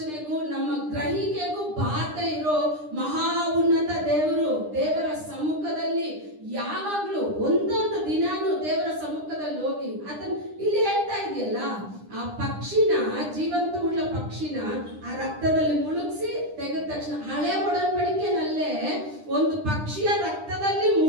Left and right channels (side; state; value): left; late; 9.9 ms